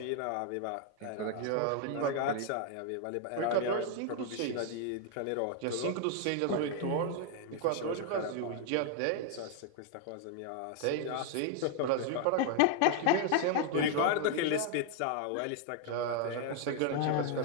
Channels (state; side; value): different; both; correlation 0.00